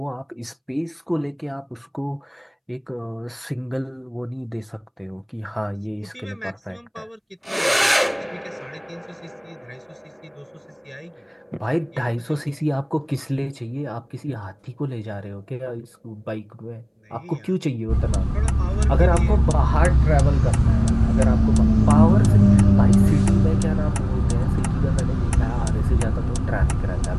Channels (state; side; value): identical; both; correlation 1.00